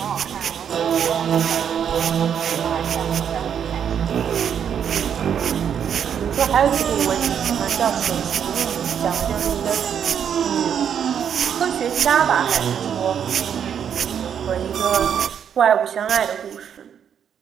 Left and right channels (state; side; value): quieter; left; 8.3 dB